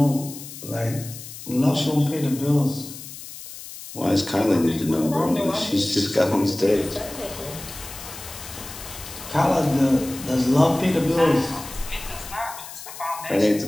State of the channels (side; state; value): left; noise; hiss, 13 dB below the sound